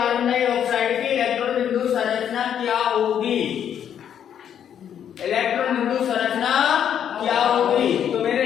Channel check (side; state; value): right; quieter; 9.1 dB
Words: डाइऑक्साइड की इलेक्ट्रॉन बिंदु संरचना क्या होगी? इलेक्ट्रॉन बिंदु संरचना